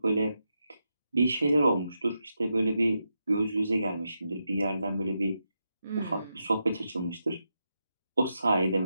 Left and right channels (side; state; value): both; inverted; correlation -0.86